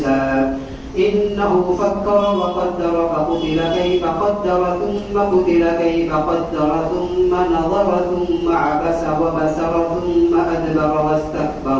إنه فكر وقدر فقتل كيف قدر ثم قتل كيف قدر ثم نظر ثم عبس وبسر ثم أدبر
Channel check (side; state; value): both; identical; correlation 1.00